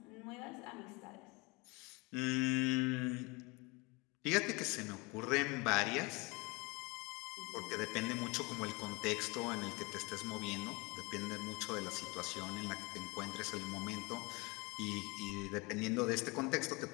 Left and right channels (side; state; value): right; quieter; 26.6 dB